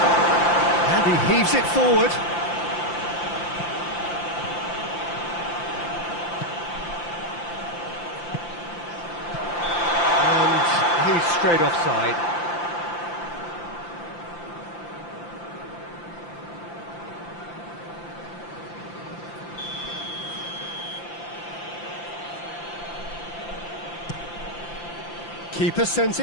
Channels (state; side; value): late; right; 5.8 ms